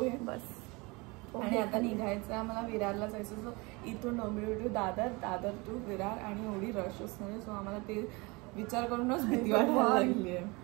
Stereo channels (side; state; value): left; quieter; 26.1 dB